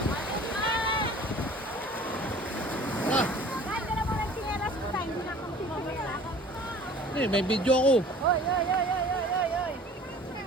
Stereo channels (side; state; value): both; normal; correlation 0.47